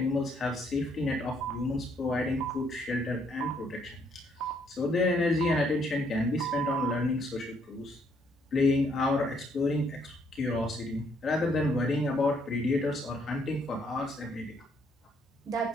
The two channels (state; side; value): normal; both; correlation 0.69